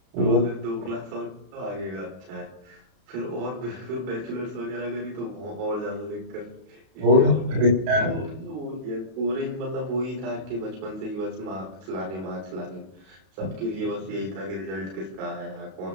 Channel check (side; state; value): left; late; 32 ms